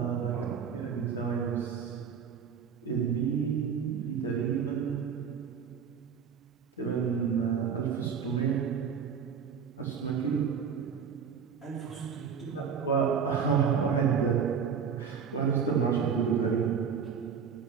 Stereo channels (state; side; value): quieter; left; 6.9 dB